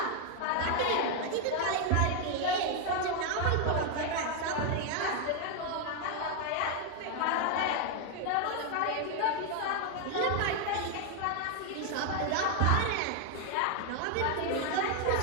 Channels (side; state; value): both; different; correlation 0.01